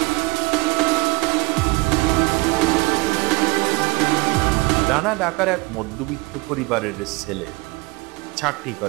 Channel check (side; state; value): left; quieter; 23.9 dB